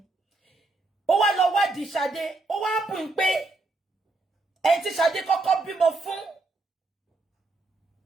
Ó wá lọ wádìí Ṣadé, ó wá bù ń pé ẹni tí Ṣadé kọ́kọ́ bímọ fún.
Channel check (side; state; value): left; quieter; 3.2 dB